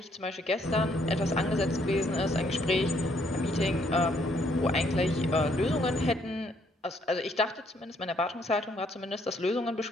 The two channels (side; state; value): both; normal; correlation 0.69